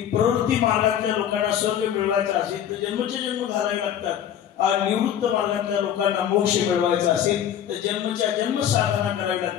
प्रवृत्ती मार्गातल्या लोकांना स्वर्ग मिळवायचा असेल तर जन्मचे जन्म घालावे लागतात, आणि निवृत्त मार्गातल्या लोकांना मोक्ष मिळवायचा असेल तर जन्मच्या जन्म साधना करावी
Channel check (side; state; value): right; quieter; 9.8 dB